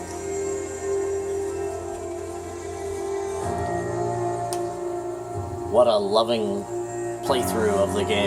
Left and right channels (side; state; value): both; identical; correlation 1.00